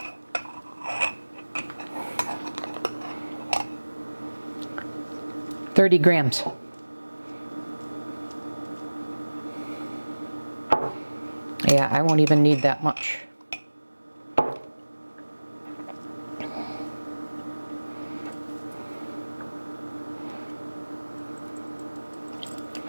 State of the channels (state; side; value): inverted; both; correlation -1.00